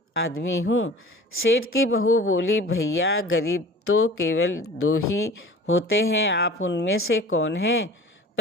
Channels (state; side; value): normal; both; correlation 0.42